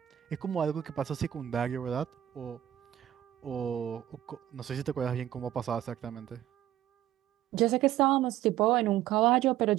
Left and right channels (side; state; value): left; quieter; 12.3 dB